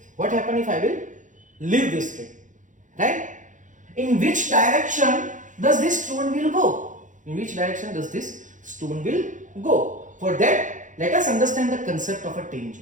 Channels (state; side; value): late; left; 0.37 ms